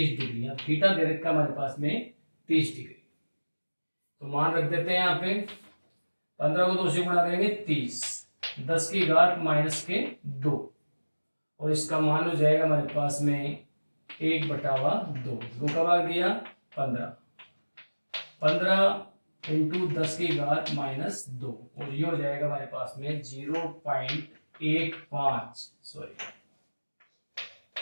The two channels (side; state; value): both; inverted; correlation -1.00